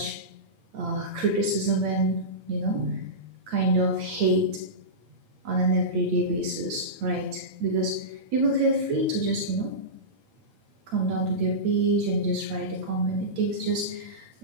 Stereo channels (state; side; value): late; left; 8.7 ms